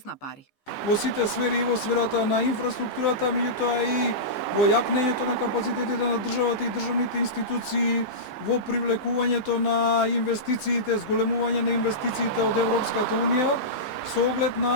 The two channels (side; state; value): right; late; 15 ms